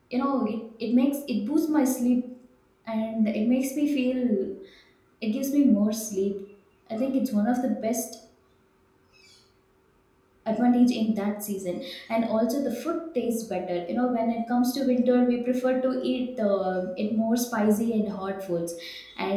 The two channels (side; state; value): both; identical; correlation 1.00